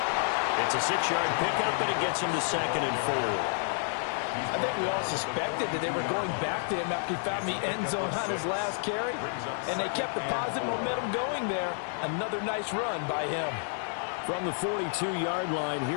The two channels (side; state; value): right; silent; 58 dB below the other